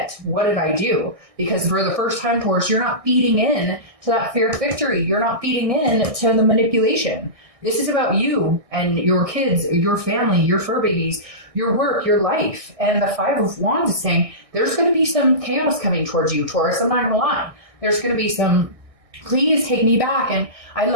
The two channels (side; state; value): left; late; 1.6 ms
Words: what did I do? Because for the first time, Taurus, you're not feeding in to that fear of victory. You're not feeding in to the manipulation. This is about you and your kids, your family, your fur babies, your work, your life. And the 5 of Wands is saying there's going to be some chaos coming towards you, Taurus. I'm not going to lie. There's going to be some, please take me back, and I